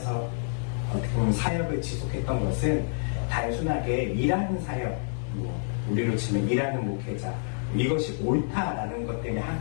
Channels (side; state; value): right; silent; 59 dB below the other